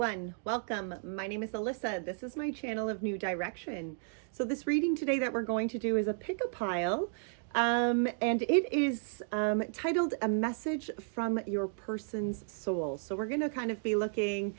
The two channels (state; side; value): silent; left; digital silence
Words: welcome. My name is Alyssa. This is my channel of New Direction. So this reading today that we're going to do is a pick a pile, and it is titled A Message from Your Person's Soul. So we're going to kind of be looking,